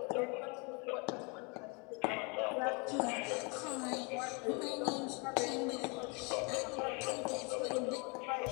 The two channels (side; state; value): right; quieter; 31.9 dB